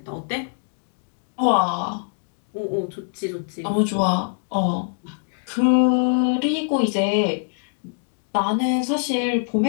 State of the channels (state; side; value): silent; right; digital silence